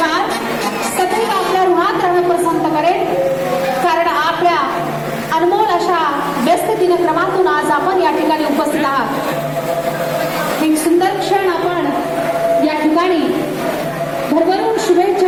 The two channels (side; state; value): left; noise; rumble, 25 dB below the sound